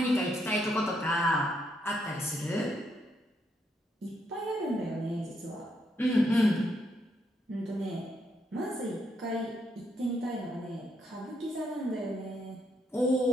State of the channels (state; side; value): normal; both; correlation 0.76